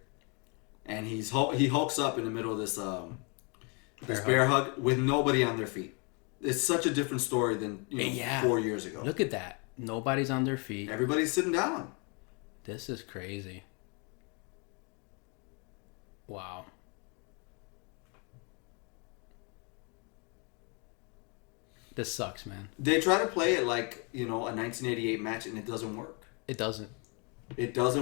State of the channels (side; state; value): right; quieter; 33.9 dB